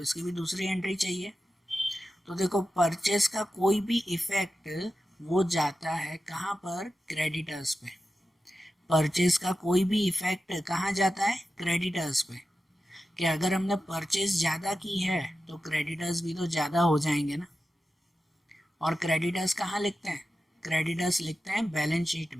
इसकी भी दूसरी एंट्री चाहिए। तो देखो परचेस का कोई भी इफेक्ट वो जाता है कहाँ पर, क्रेडिटर्स पे। परचेस का कोई भी इफेक्ट कहाँ जाता है, क्रेडिटर्स पे। कि अगर हमने परचेस ज़्यादा की है तो क्रेडिटर्स भी तो ज़्यादा हो जाएंगे ना। और क्रेडिटर्स कहाँ लिखते हैं, क्रेडिटर्स लिखते हैं बैलेंस शीट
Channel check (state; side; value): normal; both; correlation 0.92